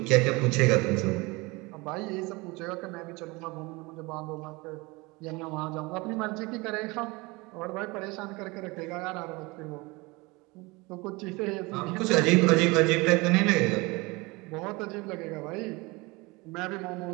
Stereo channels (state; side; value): quieter; left; 24.5 dB